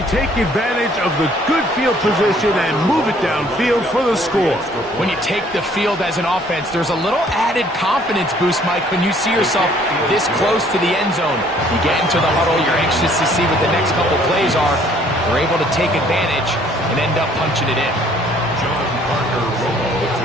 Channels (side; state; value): both; normal; correlation 0.60